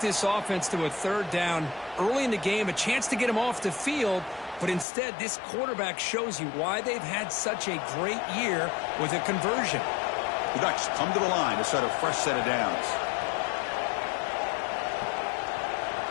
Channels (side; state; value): right; drops out; at 4.9 s